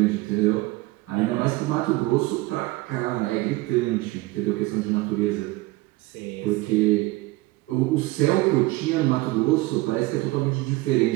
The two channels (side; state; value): left; quieter; 20.5 dB